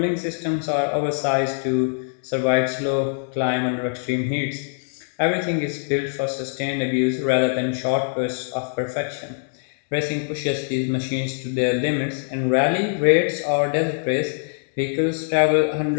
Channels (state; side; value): silent; right; 63 dB below the other